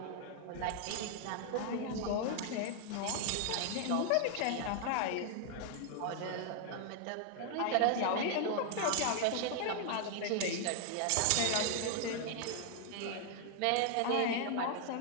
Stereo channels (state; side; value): different; both; correlation 0.00